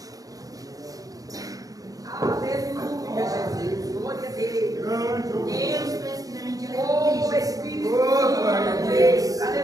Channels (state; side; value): late; left; 0.17 ms